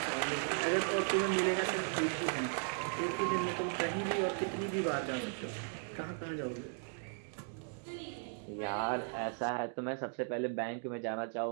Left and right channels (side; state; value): left; silent; 53 dB below the other